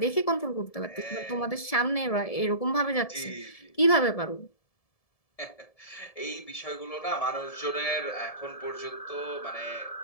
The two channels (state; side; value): late; right; 1.7 ms